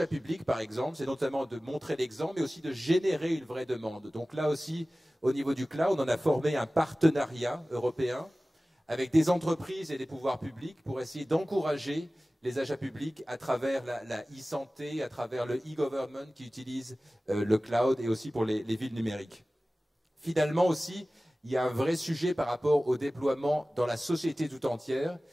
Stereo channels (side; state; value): both; normal; correlation 0.97